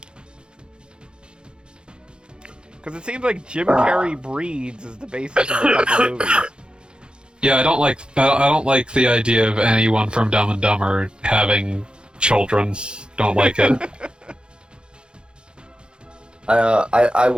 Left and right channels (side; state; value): left; late; 0.051 ms